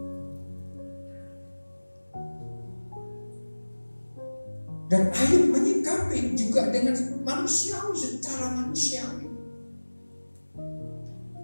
Dan Ayub menyikapi juga dengan manusiawi, secara manusiawi.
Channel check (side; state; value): both; inverted; correlation -1.00